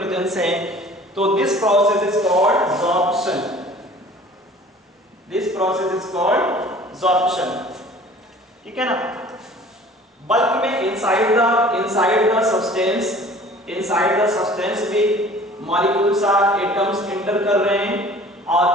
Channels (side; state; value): both; normal; correlation 0.48